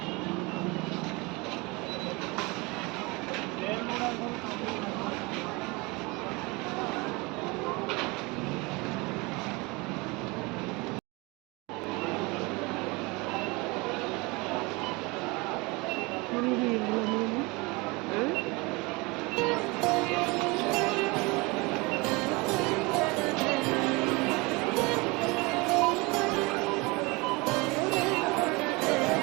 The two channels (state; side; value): quieter; left; 25.6 dB